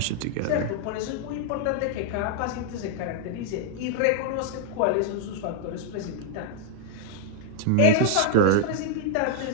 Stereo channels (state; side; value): different; both; correlation -0.01